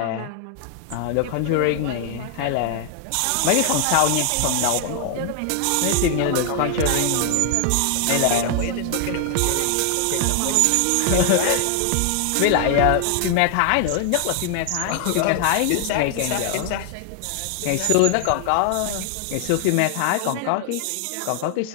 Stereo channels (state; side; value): different; both; correlation 0.00